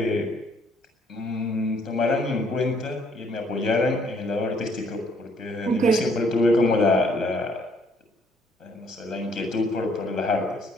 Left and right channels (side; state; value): both; normal; correlation 0.66